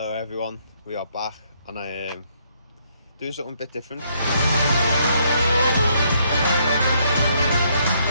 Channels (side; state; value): both; inverted; correlation -0.71